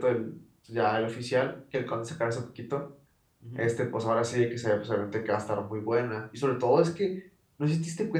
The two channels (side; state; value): both; identical; correlation 1.00